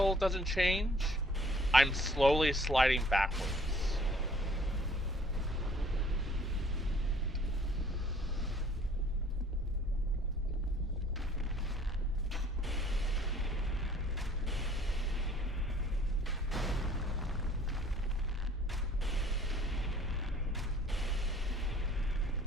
doesn't change, I'm slowly sliding backwards.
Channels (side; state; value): both; normal; correlation 0.56